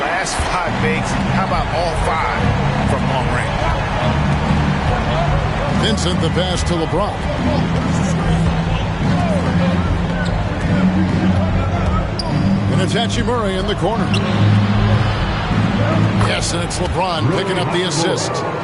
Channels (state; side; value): identical; both; correlation 1.00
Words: last 5 makes, how about all 5 from long range? Vincent the pass to LeBron. And it's Hachimura in the corner. Yes, and it's LeBron picking up the assist.